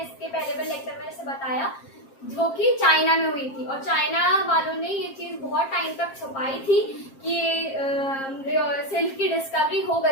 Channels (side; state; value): right; late; 7.5 ms